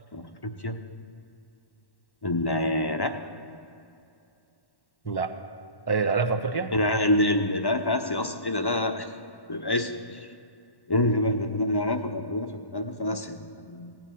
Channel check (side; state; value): right; late; 1.1 ms